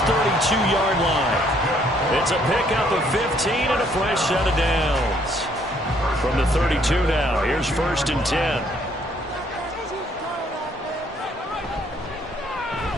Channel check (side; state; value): both; normal; correlation 0.66